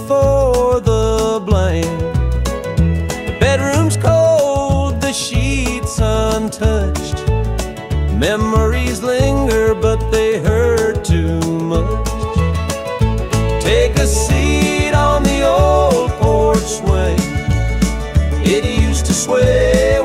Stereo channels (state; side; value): identical; both; correlation 1.00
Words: the blame. Bedroom's cold, the sheets untouched. Memories linger, but they hurt too much. Take a seat on the old porch swing, it used to sway